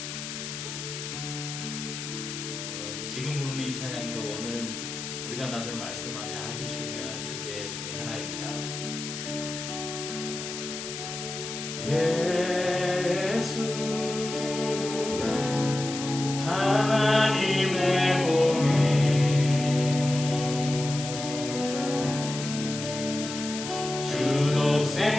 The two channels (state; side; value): noise; left; hiss, 7 dB below the sound